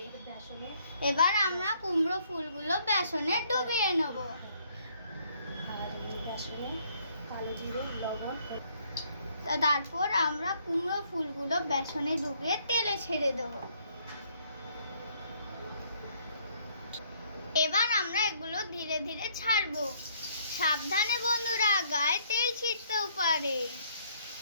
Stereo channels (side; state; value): both; inverted; correlation -0.66